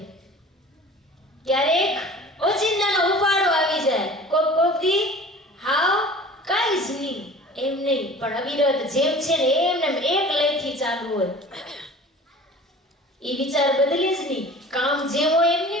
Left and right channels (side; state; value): both; normal; correlation 0.42